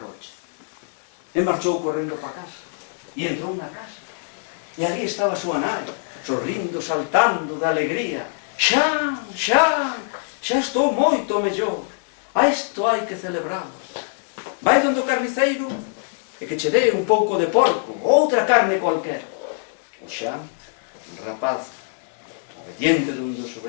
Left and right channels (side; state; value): right; silent; digital silence